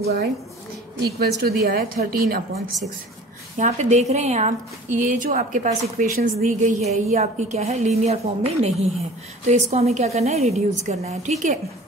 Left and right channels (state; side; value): normal; both; correlation 0.44